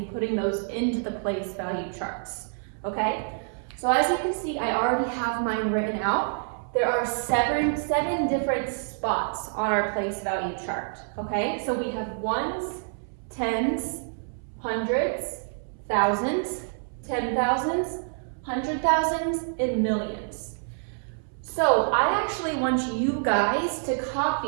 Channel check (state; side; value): silent; left; 60 dB below the other